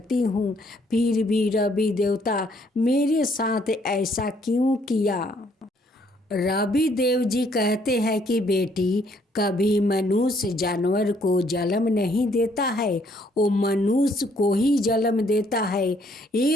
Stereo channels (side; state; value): both; normal; correlation 0.67